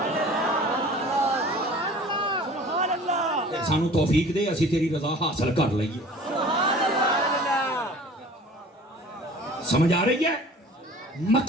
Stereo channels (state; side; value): normal; both; correlation 0.46